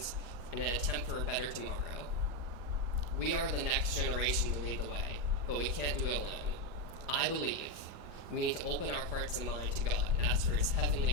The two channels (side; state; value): left; late; 4.9 ms